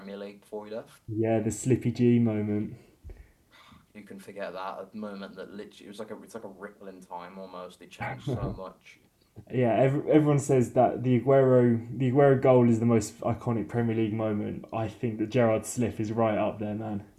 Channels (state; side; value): identical; both; correlation 1.00